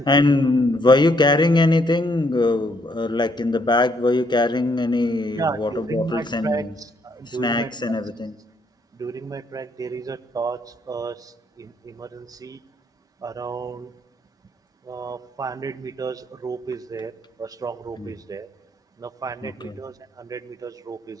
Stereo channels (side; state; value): both; normal; correlation 0.71